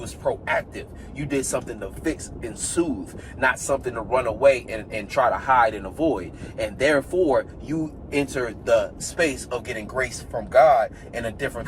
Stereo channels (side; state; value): both; identical; correlation 1.00